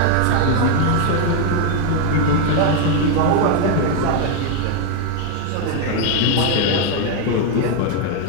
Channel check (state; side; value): different; both; correlation 0.00